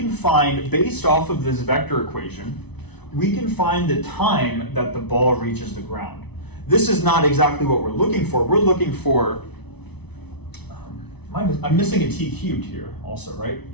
find, based off of this vector equation, we can find the time that the ball reaches the ground. This is not exactly what we're looking for. We're looking for, I'm missing a t cubed here also, right?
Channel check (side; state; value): right; late; 0.99 ms